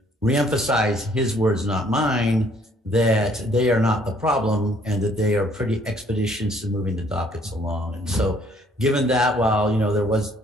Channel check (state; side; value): normal; both; correlation 0.62